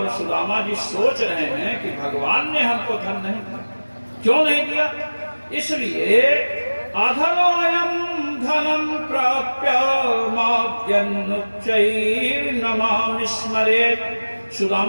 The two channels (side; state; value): both; inverted; correlation -1.00